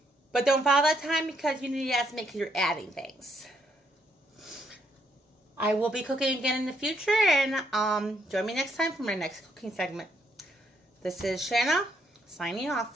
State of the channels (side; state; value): both; normal; correlation 0.73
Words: but don't follow that time because you need to estimate because you're adding things. I will be cooking again in the future, and join me next time for my next cooking segment. This is Shana, signing